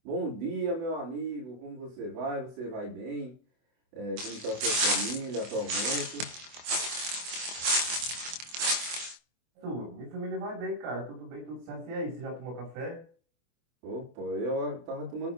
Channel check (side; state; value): left; late; 24 ms